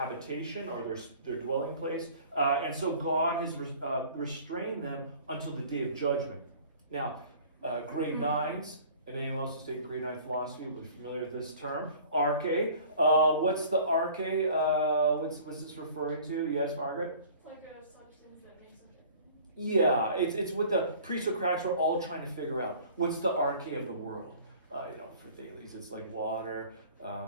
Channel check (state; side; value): inverted; both; correlation -0.48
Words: or their dwelling place, and so God has restrained them until the day of judgment. Now, grade 9s, and anyone else who's taking grade 9 philosophy will be familiar with this term, arche. What's the arche? What's this referring to? Yes, Margaret? It's like a substance that makes up it. Yeah, it's what the pre-Socratics were all trying to figure out. What's the arche of the world? For Thales, it's like water.